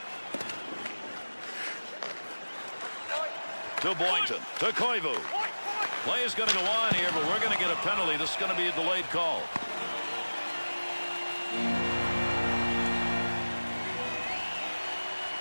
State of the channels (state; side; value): inverted; both; correlation -1.00